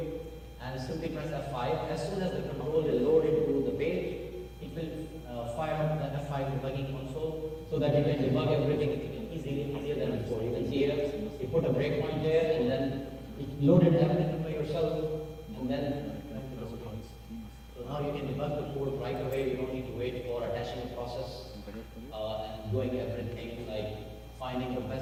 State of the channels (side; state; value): both; identical; correlation 1.00